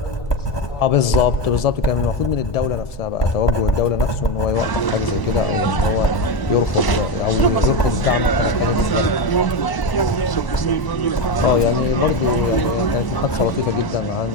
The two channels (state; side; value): late; right; 1.0 ms